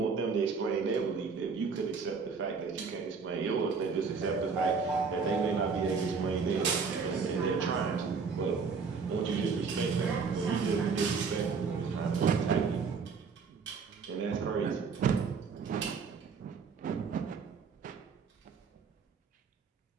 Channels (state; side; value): quieter; left; 5.3 dB